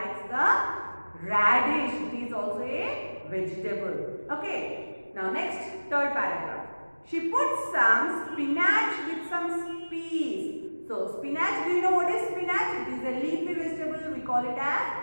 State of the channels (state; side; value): inverted; both; correlation -1.00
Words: the radish. It is also a vegetable. Okay. Now next, third paragraph. She puts some spinach with some peas. So spinach, do you know what is spinach? It is a leafy vegetable. We call it